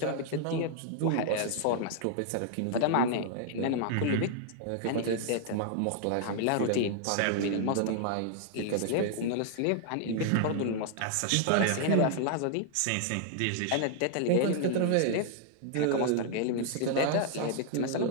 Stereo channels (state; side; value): different; both; correlation -0.01